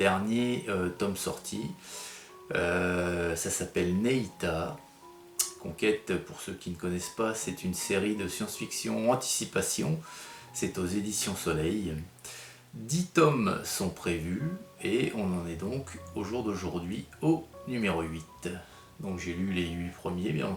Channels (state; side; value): identical; both; correlation 1.00